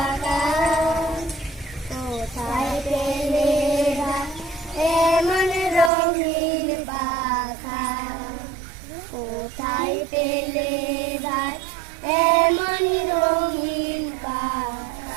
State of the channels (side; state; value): left; drops out; at 5.9 s